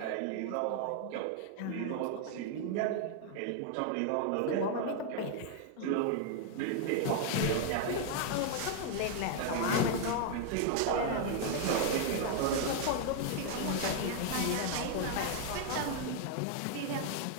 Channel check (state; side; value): different; both; correlation 0.00